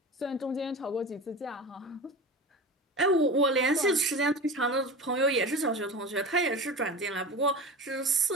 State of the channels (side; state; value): both; normal; correlation 0.31